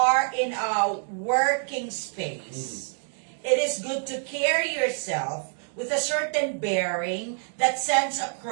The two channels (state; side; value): silent; left; 58 dB below the other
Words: in a working space, it is good to carry yourself with a certain bearing that sends